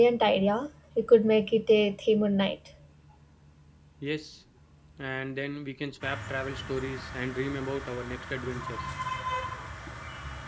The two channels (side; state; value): both; identical; correlation 1.00